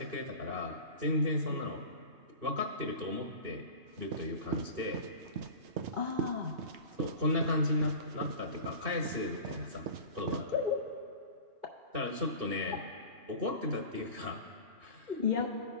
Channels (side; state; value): left; late; 2.6 ms